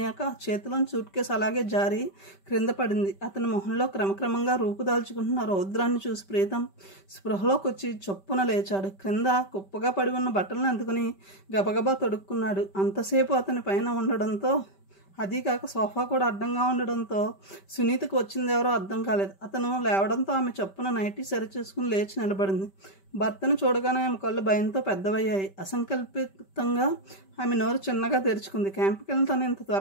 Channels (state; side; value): late; right; 5.2 ms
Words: చేతిలోని సూట్ కేసు అలాగే జారి క్రింద పడింది. అతని మొహంలో క్రమక్రమంగా రూపుదాల్చుకుంటున్న రౌద్రాన్ని చూసి ప్రీతం స్పృహలోకి వచ్చి చొప్పున లేచాడు. క్రింద కుప్పగా పడి ఉన్న బట్టలను అందుకుని గబగబా తొడుక్కున్నాడు. అంతసేపు అతని పైన ఉండడంతో, అదీ కాక సోఫా కూడా అడ్డంగా ఉండడంతో సునీతకు వచ్చిందెవరో అర్థం కాలేదు. అతను లేవడంతో ఆమె చప్పున నైటీ సరిచేసుకుని లేచి నిలబడింది. భర్తను చూడగానే ఆమె కళ్ళు భయంతో పెద్దవయ్యాయి. అసంకల్పితంగా ఆమె నోరు చిన్నగా తెరుచుకుంది. క్యాంపుకి వెళ్ళి తను ఇంత